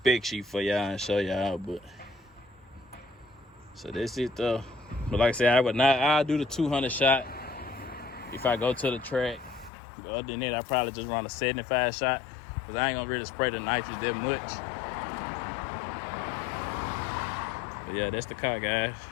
sheet for y'all and show y'all, but so that's it though. But like I said, I'll do the 200 shot if I go to the track. But other than that, I probably just run a 75 shot because I ain't gonna really spray the nitrous that much. But yeah, that's the car, guys.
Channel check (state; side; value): drops out; right; at 9.7 s